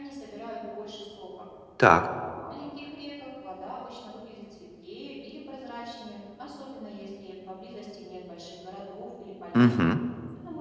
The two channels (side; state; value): both; identical; correlation 1.00